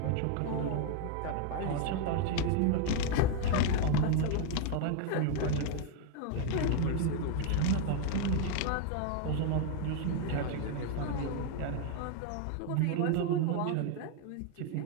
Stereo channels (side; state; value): both; different; correlation 0.00